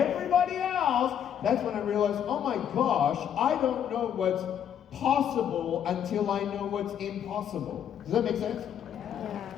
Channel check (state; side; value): quieter; right; 9.2 dB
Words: else, that's when I realized, oh my gosh, I don't know what's possible until I know what's impossible. Does that make sense?